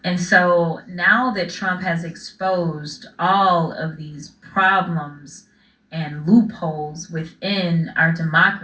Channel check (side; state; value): both; identical; correlation 1.00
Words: And so now that Trump has exposed all of these problems and loopholes within our